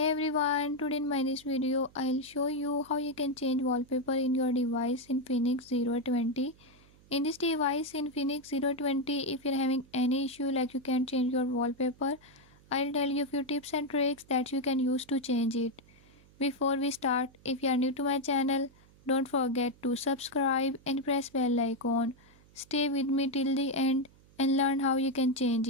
everyone, today in my this video I'll show you how you can change wallpaper in your device in Infinix 020. In this device in Infinix 020, if you're having any issue like you can't change your wallpaper, I'll tell you a few tips and tricks that you can use to change it. Before we start, if you are new to my channel, don't forget to subscribe and press bell icon. Stay with me till the end and learn how you can change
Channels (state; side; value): noise; right; hum, 27 dB below the sound